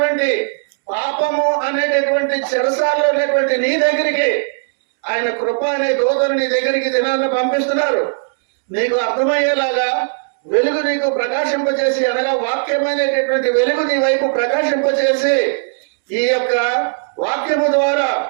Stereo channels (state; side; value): silent; left; digital silence